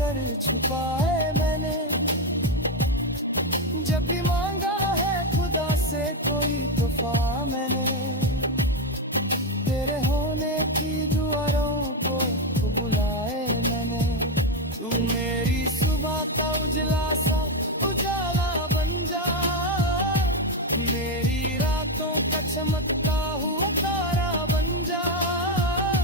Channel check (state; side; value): normal; both; correlation 0.08